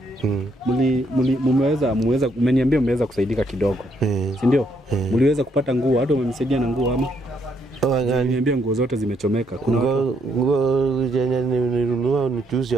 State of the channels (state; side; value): normal; both; correlation 0.73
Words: Mmeweza umeniambia mmeweza kusaidika kidogo. Si ndio? Mliweza kupata nguo, hata umemsaidia na nguo ama? Niambia nguo zote zimechomeka. Kuna nguo zenye nilinunua nichuzi